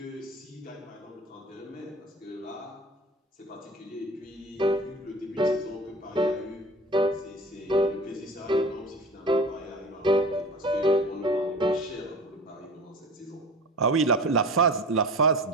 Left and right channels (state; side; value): normal; both; correlation 0.38